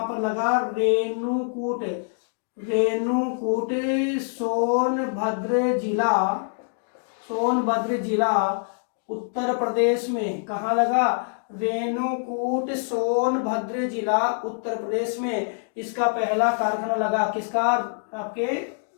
पर लगा? रेणुकूट। रेणुकूट सोनभद्र जिला, सोनभद्र जिला उत्तर प्रदेश में। कहाँ लगा? रेणुकूट सोनभद्र जिला उत्तर प्रदेश में इसका पहला कारखाना लगा। किसका? आपके,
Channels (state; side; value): silent; right; digital silence